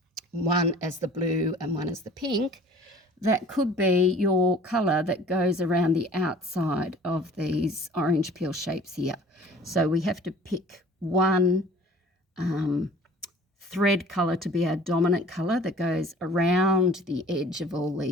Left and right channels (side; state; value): both; normal; correlation 0.49